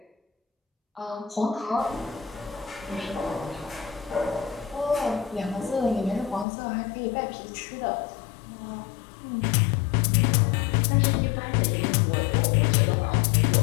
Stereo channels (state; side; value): drops out; right; at 6.5 s